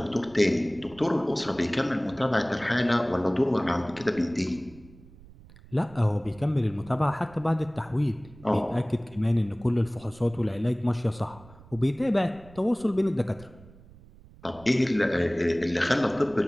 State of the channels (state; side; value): noise; right; rumble, 22 dB below the sound